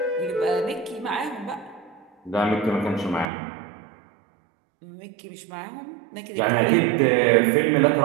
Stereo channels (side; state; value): left; drops out; at 3.3 s